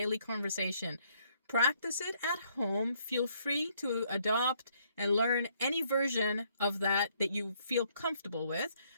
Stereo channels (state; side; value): inverted; both; correlation -0.68